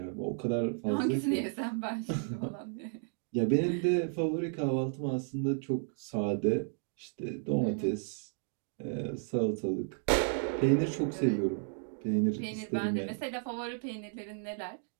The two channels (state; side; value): silent; left; 56 dB below the other